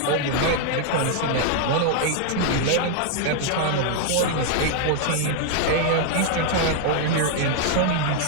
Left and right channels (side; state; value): both; different; correlation 0.00